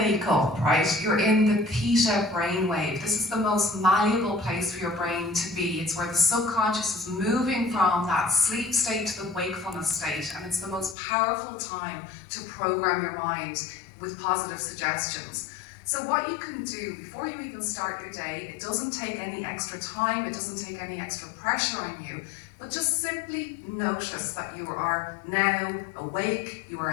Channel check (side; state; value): right; drops out; at 11.0 s